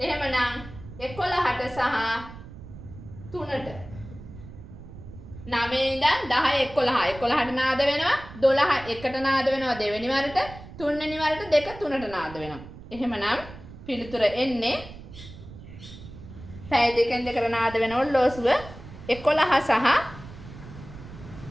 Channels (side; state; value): right; noise; rumble, 15 dB below the sound